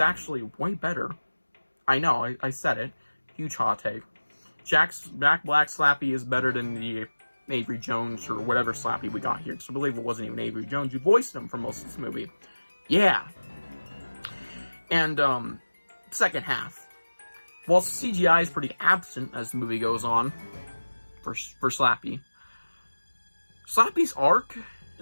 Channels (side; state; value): both; inverted; correlation -1.00